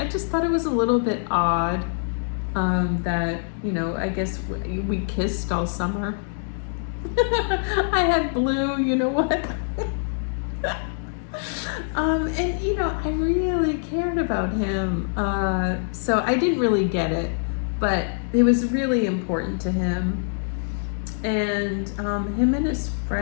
thought it was a little bit odd that, you know, I guess we kissed all summer. I had blue, you know what? And you know, I really cared about him. So I didn't really get it, but it was really important to him. And him and his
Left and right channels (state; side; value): silent; right; digital silence